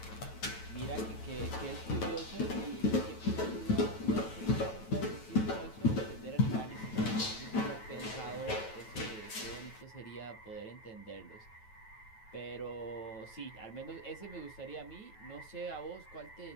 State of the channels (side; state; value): right; late; 9.1 ms